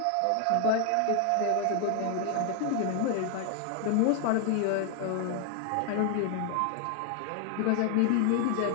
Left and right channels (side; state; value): both; different; correlation 0.00